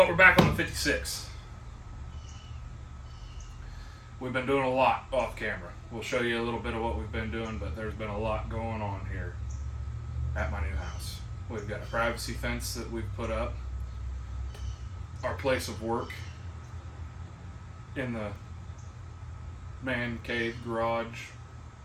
we're back on the 56. We've been doing a lot off camera. We'll show you a little bit of what we've been doing, but there's been a lot going on here at my new house. We've got a privacy fence that we've put up. Our place of work in the man cave, garage,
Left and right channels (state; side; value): identical; both; correlation 1.00